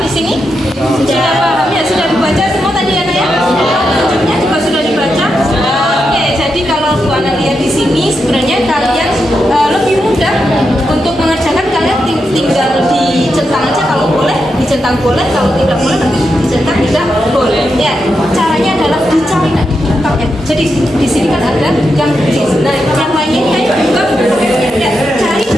di sini? Sudah paham ya?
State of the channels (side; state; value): both; normal; correlation 0.85